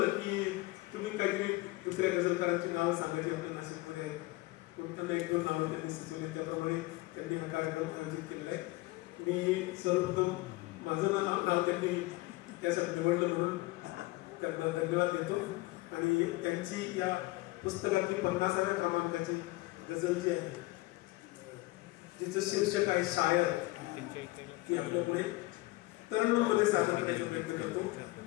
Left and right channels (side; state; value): right; quieter; 20.8 dB